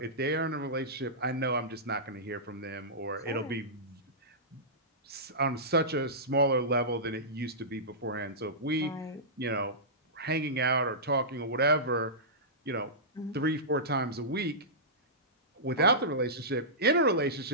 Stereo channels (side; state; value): both; normal; correlation -0.17